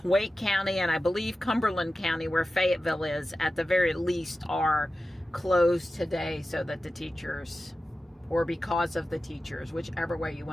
Wake County and I believe Cumberland County, where Fayetteville is, at the very least are closed today, so that the teachers, or because of the teachers, whichever way you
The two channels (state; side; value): normal; both; correlation 0.94